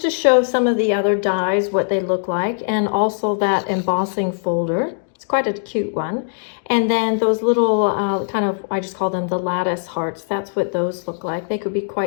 to show some of the other dies, what they look like, and also that embossing folder. It's quite a cute one. And then those little kind of, I just call them the lattice hearts. That's what those look like. They could be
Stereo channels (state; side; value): silent; right; digital silence